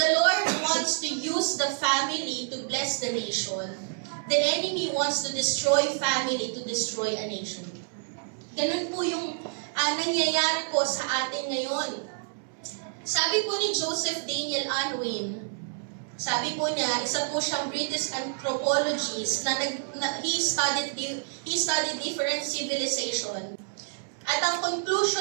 Lord wants to use the family to bless the nation, the enemy wants to destroy family to destroy a nation. Ganun po yung nangyayari po sa atin ngayon. Sabi po ni Joseph Daniel Unwin, sabi po niya, isa po siyang British anthropologist na he studied different civilization. At ang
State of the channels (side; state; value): left; silent; 59 dB below the other